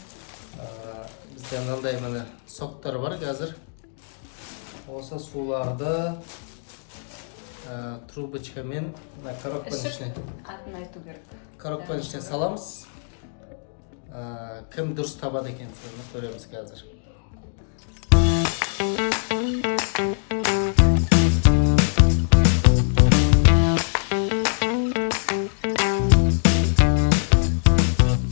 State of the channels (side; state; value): right; silent; 61 dB below the other